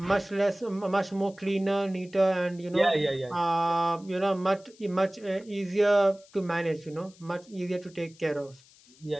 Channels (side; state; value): left; noise; hiss, 26 dB below the sound